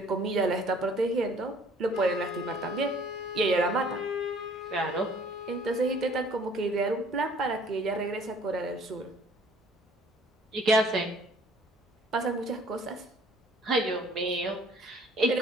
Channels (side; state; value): both; normal; correlation 0.56